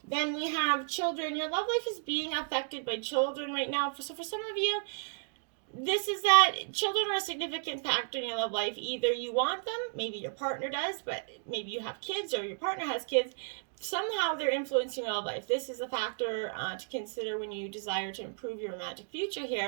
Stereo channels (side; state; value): left; silent; digital silence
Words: Then we have children. Your love life is being affected by children right now. So for some of you, this is that children are a significant factor in your love life. Either you want them, maybe your partner does, but maybe you have kids or your partner has kids. Somehow they're influencing your love life. This is a factor to consider when you desire to improve your romantic future